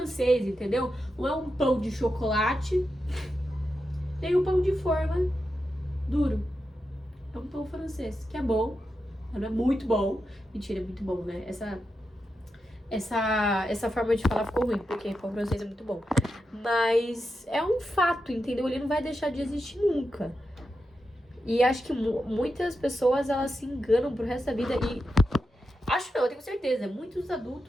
entendeu? Não é um pão de chocolate, nem um pão de forma duro. É um pão francês, que é bom, não é muito bom. Mentira, é muito bom, né? Essa forma de falar ficou ruim, porque pão francês é muito bom. Mas é um fato, entendeu? Ele não vai deixar de existir nunca. E acho que muitas pessoas, elas se enganam pro resto da vida. E acho não, eu tenho certeza. Muitos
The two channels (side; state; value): both; normal; correlation 0.88